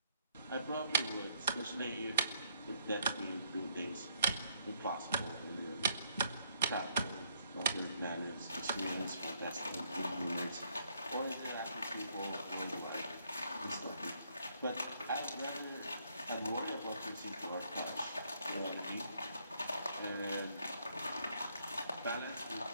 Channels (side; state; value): both; inverted; correlation -0.71